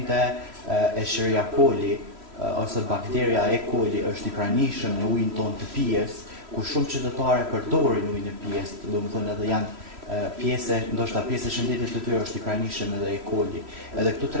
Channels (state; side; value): late; left; 3.1 ms